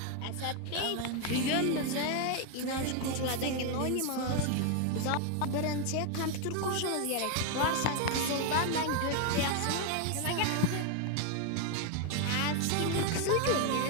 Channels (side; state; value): both; different; correlation 0.01